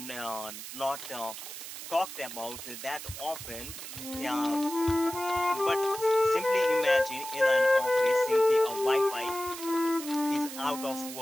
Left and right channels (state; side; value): noise; right; hiss, 10 dB below the sound